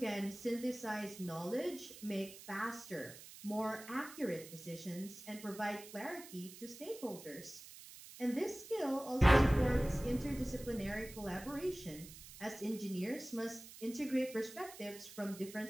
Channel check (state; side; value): noise; right; hiss, 15 dB below the sound